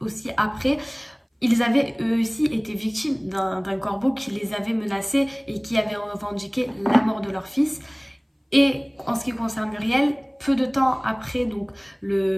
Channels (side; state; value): both; identical; correlation 1.00